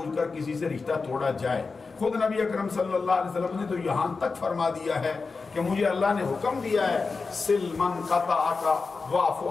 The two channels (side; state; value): right; quieter; 4.4 dB